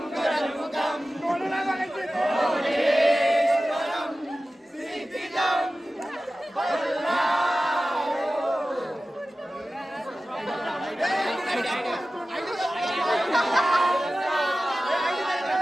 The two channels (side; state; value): both; normal; correlation 0.95